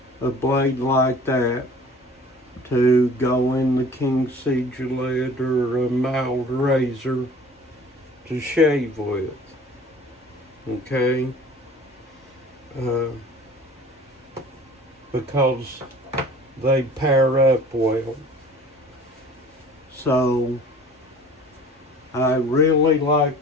a blade like that to go in the King C Gillette or a mild razor to shave with, okay? Because they pair up well. So I really like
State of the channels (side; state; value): both; normal; correlation 0.47